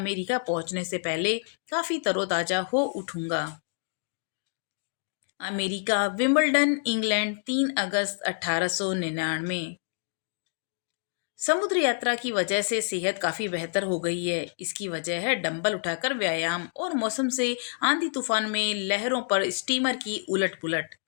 पहुंचने से पहले काफी तरोताजा हो उठूंगा। अमेरिका, विंबलडन, इंग्लैंड, 3 अगस्त 1899। समुद्र यात्रा की वजह से सेहत काफी बेहतर हो गई है। इसकी वजह है डंबल उठाकर व्यायाम और मौसम से आंधी तूफान में लहरों पर स्टीमर की उलट पुलट।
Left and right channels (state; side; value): silent; right; digital silence